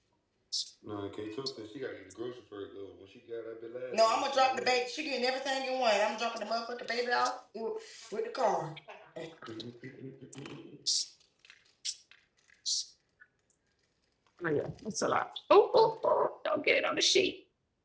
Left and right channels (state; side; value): identical; both; correlation 1.00